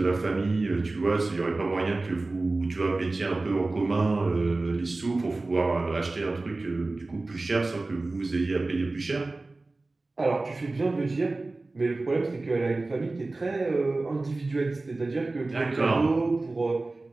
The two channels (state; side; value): quieter; left; 3.2 dB